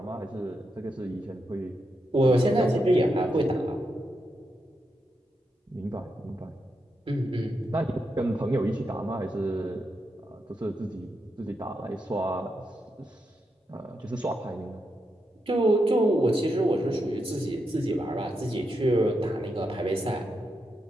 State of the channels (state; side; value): normal; both; correlation 0.84